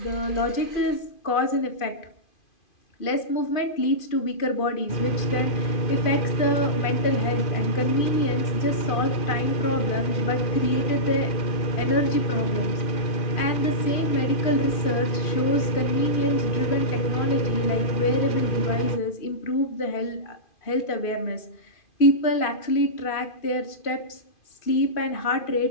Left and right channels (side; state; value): right; late; 2.5 ms